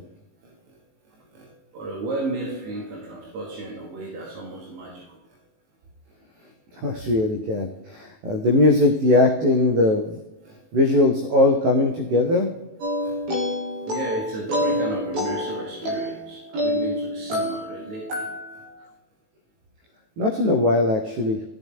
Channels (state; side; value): late; left; 18 ms